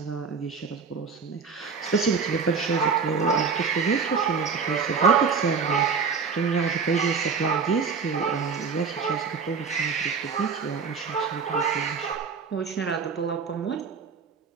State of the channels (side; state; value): left; quieter; 5.5 dB